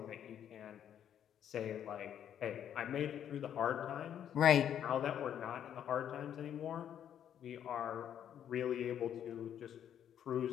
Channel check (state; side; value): quieter; right; 9.7 dB